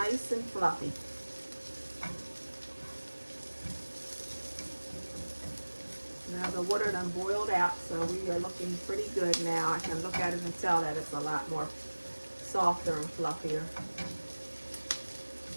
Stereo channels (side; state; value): both; inverted; correlation -1.00